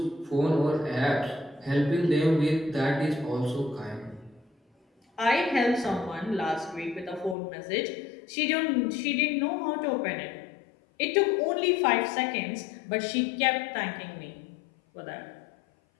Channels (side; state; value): right; drops out; at 7.4 s